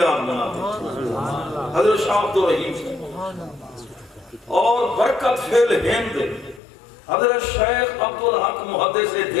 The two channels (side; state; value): right; drops out; at 6.6 s